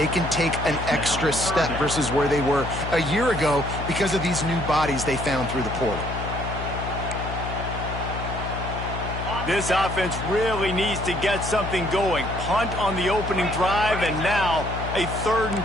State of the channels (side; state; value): left; noise; hum, 6 dB below the sound